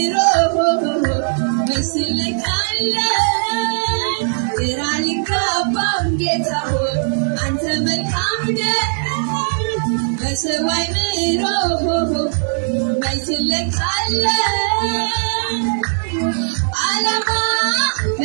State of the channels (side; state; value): left; silent; 65 dB below the other